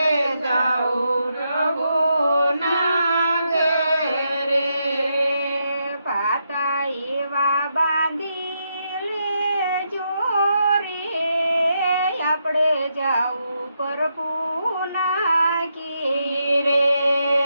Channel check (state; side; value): inverted; both; correlation -0.81